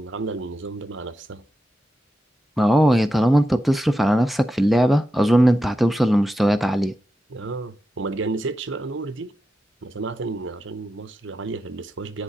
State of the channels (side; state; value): both; normal; correlation 0.89